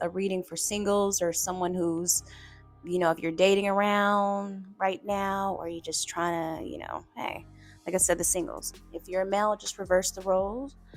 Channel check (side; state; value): both; identical; correlation 1.00